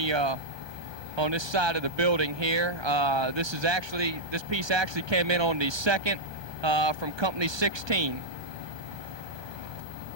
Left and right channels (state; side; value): late; left; 1.2 ms